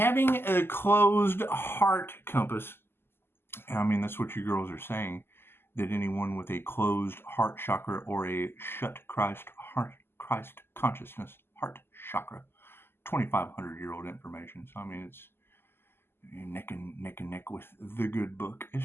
a closed heart compass, I mean, that's what you girls are saying, that anyone with a closed heart chakra or a shut Christ consciousness heart chakra, 2,500-year-old information. So I mean, it's neck and neck with the good book.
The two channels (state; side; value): late; right; 0.11 ms